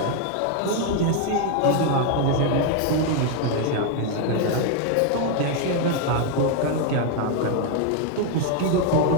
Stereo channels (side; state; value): both; different; correlation 0.01